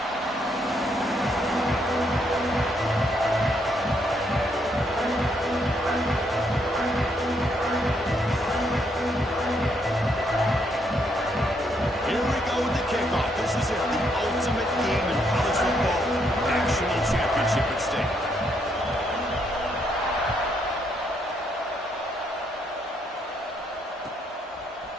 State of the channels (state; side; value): normal; both; correlation 0.74